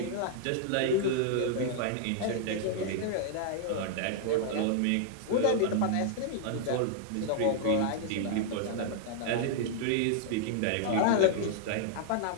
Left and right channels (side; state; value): both; different; correlation -0.01